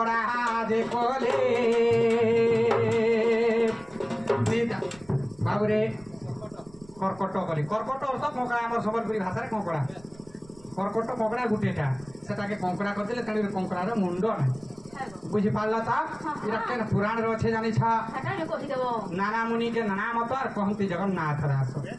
जे कले बाबुरे कर्कट कली कर्कट अर्थ कंकड़ा हमर सम्बलपुरी भाषा रे कंकड़ा कर्कट कंकड़ा गुटेटा सेटाके कंकड़ा कर देले तणी कंकड़ा रे मुंड ना बुझी पारला ता इरा केन पुराण रे छे जानि छा नाना मुनि के नाना मत और कहंती जगन्नाथ दास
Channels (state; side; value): noise; right; rumble, 24 dB below the sound